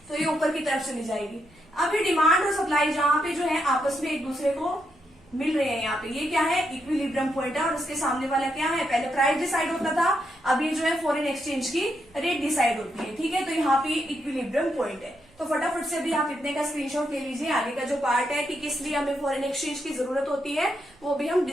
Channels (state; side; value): noise; right; rumble, 30 dB below the sound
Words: तो ये ऊपर की तरफ चली जाएगी। अब ये डिमांड और सप्लाई जहाँ पे जो है आपस में एक दूसरे को मिल रहे हैं, यहाँ पे ये क्या है, इक्विलिब्रियम पॉइंट है, और उसके सामने वाला क्या है, पहले प्राइस डिसाइड होता था, अब ये जो है फॉरेन एक्सचेंज की रेट डिसाइड होती है, ठीक है। तो यहाँ पे इक्विलिब्रियम पॉइंट है। तो फटाफट से भी आप इतने का स्क्रीनशॉट ले लीजिए। आगे का जो पार्ट है कि किस लिए हमें फॉरेन एक्सचेंज की जरूरत होती है वो भी हम